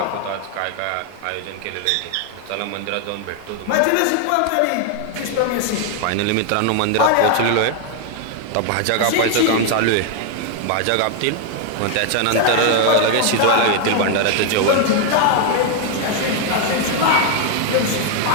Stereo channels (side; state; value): both; different; correlation 0.00